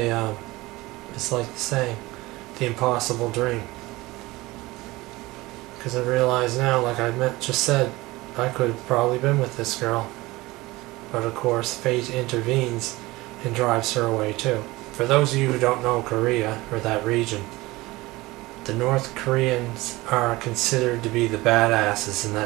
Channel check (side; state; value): left; quieter; 20.3 dB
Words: it's like the saying, the impossible dream. Because I realize now, like I just said, I could have probably been with this girl. But of course, fate intervenes and drives her away too. For those of you who don't know Korea, or that region, the North Koreans are considered to be the badasses in